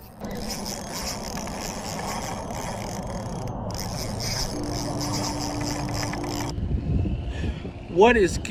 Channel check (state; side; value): identical; both; correlation 1.00